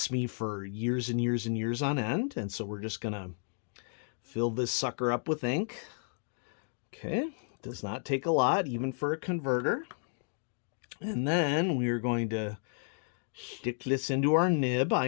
me for years and years and years on end. And so we're just gonna fill this sucker up with ink. Okay, does not take a lot, even for a converter. And then we're going to stick this into our nib. I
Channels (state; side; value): silent; right; digital silence